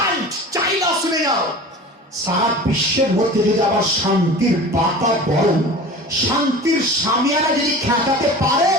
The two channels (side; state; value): both; normal; correlation 0.37